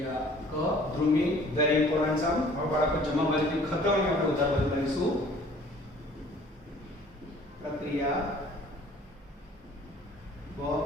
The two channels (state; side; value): normal; both; correlation 0.52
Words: ક ધ્રુવી વેરી ઇમ્પોર્ટન્ટ સમ. હવે બાળકો જમા બાજુની ખતવણી આપણે ઉધાર બાજુ કરીશું. પ્રક્રિયા બ